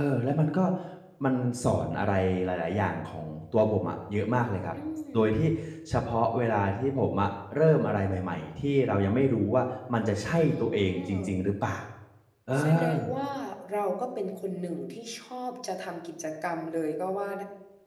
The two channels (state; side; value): identical; both; correlation 1.00